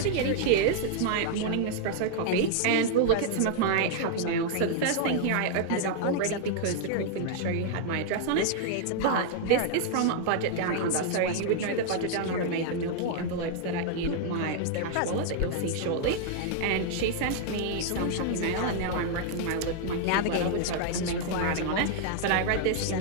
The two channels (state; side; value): different; both; correlation -0.01